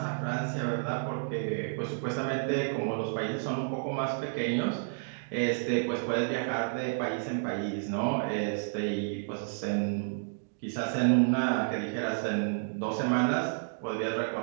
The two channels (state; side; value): silent; left; digital silence